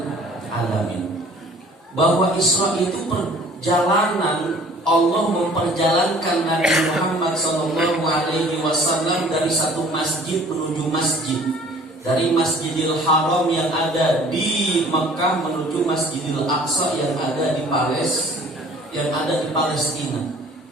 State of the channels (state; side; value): normal; both; correlation 0.51